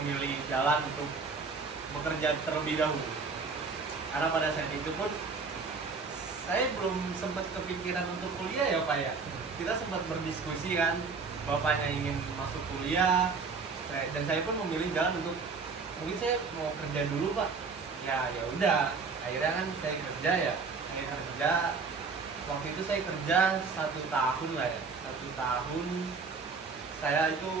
jalan untuk bekerja terlebih dahulu. Karena pada saat itu pun saya belum sempat kepikiran untuk kuliah ya Pak ya. Kita sempat berdiskusi kan, bapaknya ingin masuk kuliah, dan saya pun memilih jalan untuk mungkin saya mau kerja dulu Pak. Ya udah, akhirnya kan saya kerja ya. Saya kerja waktu itu saya kerja 1 tahun lah ya. 1 tahun saya itu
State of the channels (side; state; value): left; quieter; 4.8 dB